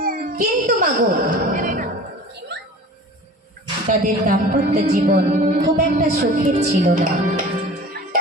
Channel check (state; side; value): normal; both; correlation 0.40